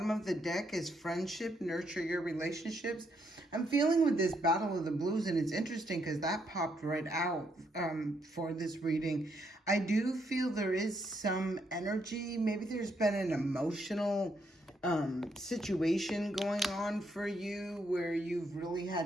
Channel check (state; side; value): normal; both; correlation 0.75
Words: of the deck is friendship, nurture your relationships. I'm feeling with this Battle of the Blues, and it's interesting because that popped right out for this reading. I do feel there is some energy. Maybe there's been an emotional situation going on for you where you've really